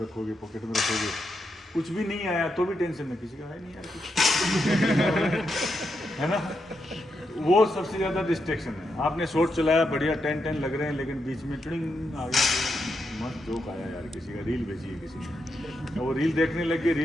रखोगे, पॉकेट में रखोगे, कुछ भी नहीं आया तो भी टेंशन है, किसी का है नहीं यार कुछ है ना। वो सबसे ज़्यादा डिस्ट्रैक्शन है। आपने शॉट चलाया, बढ़िया 10 लग रहे हैं, लेकिन बीच में ट्रिंग आ गया, मस्त जोक आया यार, किसी का रील भेजी है किसी ने, वो रील देखने लगे,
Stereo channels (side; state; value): both; normal; correlation 0.83